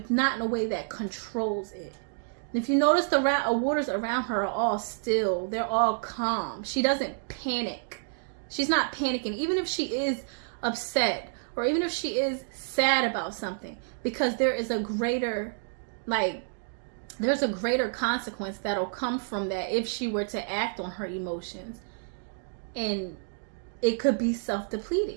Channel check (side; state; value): left; silent; digital silence